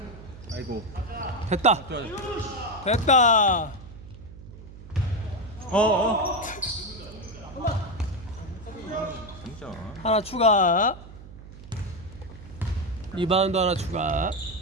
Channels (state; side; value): noise; right; hum, 16 dB below the sound